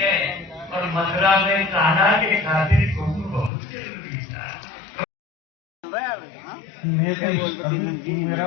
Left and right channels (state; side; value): drops out; right; at 3.5 s